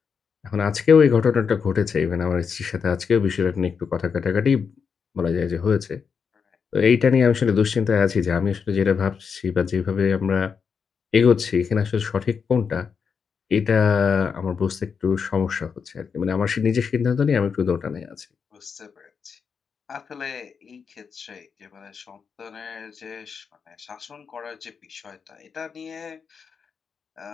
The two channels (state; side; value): quieter; right; 6.1 dB